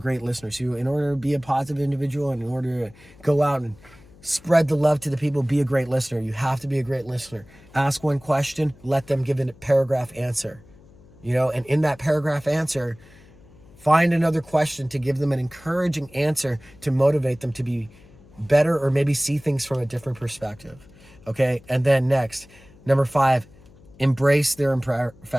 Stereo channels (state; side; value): noise; left; hum, 25 dB below the sound